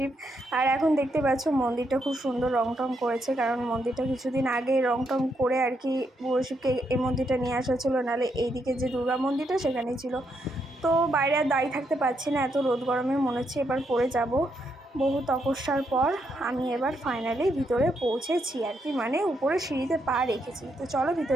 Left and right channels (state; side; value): normal; both; correlation 0.78